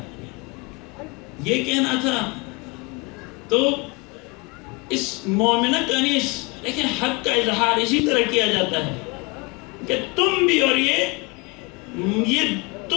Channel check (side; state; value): right; quieter; 27.8 dB